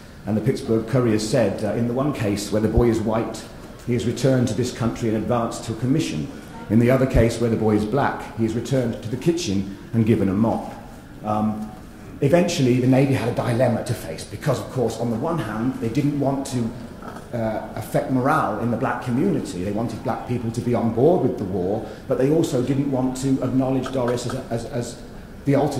And the Pittsburgh Courier said, in the one case where the boy is white, he is returned to this country and advanced to a commission. In the other case where the boy is black, he is returned to the kitchen and given a mop. Eventually, the Navy had a dilemma to face because, of course, on the one hand, they didn't want to affect morale in the black community. They wanted black people to be on board with the war, but they also didn't want to acknowledge Doris as the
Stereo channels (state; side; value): identical; both; correlation 1.00